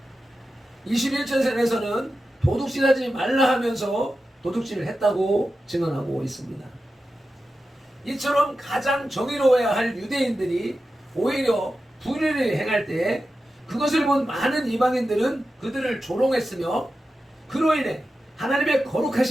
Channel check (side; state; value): both; normal; correlation 0.92